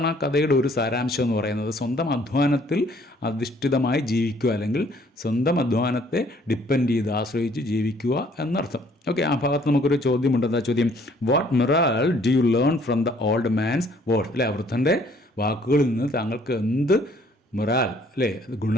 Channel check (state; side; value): normal; both; correlation 0.61